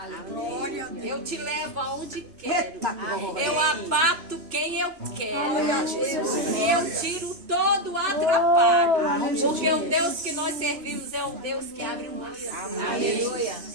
Eu te levo aonde quero. Eita, glória. Eu abato quem eu quero. Aleluia, Jesus. Eu tiro todo o atrapalho. aleluia. Porque o Deus que nós servimos é o Deus que abre o mar. Aleluia.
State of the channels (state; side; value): late; left; 3.1 ms